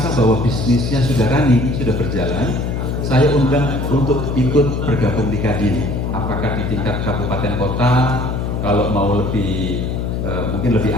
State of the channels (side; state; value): left; noise; hum, 2 dB below the sound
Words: bahwa bisnisnya sudah running, sudah berjalan, saya undang untuk ikut bergabung di Kadin. Apakah di tingkat kabupaten kota, kalau mau lebih mungkin lebih